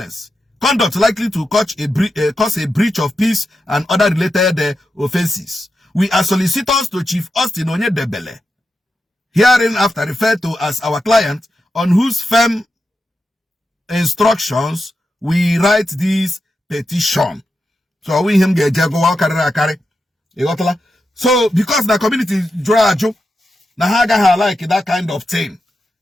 conduct likely to cause a breach of peace and other related offenses. We are solicitors to Chief Austin Onyedebele, hereinafter referred to as our client, on whose firm instructions we write this petition. So we him get jago carry. So because the community draw na haga like that kind of thing,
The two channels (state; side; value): normal; both; correlation 0.89